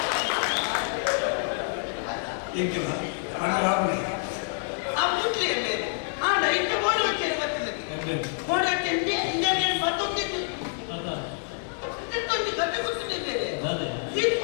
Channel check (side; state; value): right; silent; digital silence